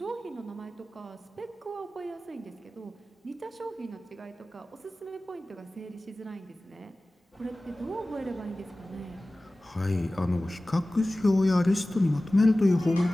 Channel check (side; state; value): both; normal; correlation 0.97